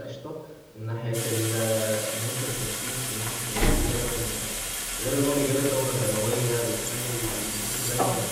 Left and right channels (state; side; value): identical; both; correlation 1.00